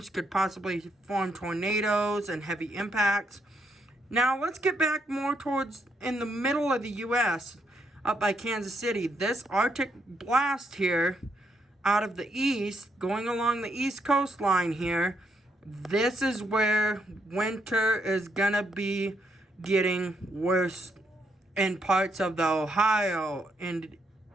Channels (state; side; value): normal; both; correlation 0.76